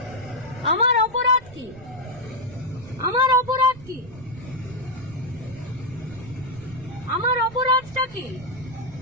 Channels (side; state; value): right; noise; rumble, 19 dB below the sound